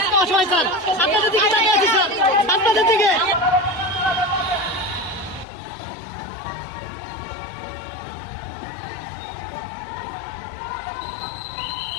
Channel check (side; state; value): right; drops out; at 5.5 s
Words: অসহায় স্যার আপনাদের দিকে তাকিয়ে আছি স্যার আপনাদের দিকে